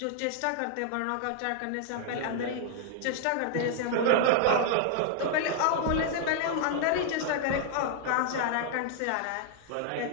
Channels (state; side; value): different; both; correlation 0.00